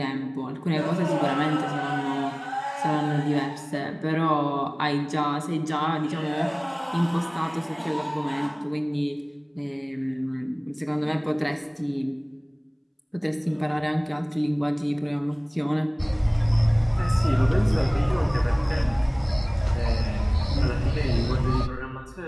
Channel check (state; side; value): identical; both; correlation 1.00